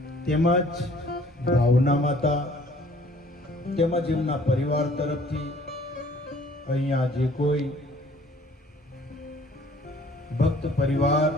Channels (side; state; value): both; normal; correlation 0.56